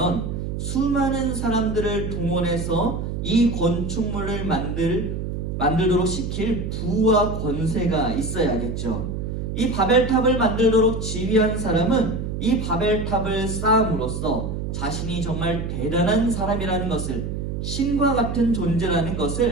수많은 사람들을 동원해서 이 건축물을 만들도록 시킬 부와 권세가 있어야겠죠. 이 바벨탑을 만들도록 지휘한 사람은 이 바벨탑을 쌓음으로써 자신이 정말 대단한 사람이라는 것을, 신과 같은 존재라는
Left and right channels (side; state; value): right; noise; hum, 4 dB below the sound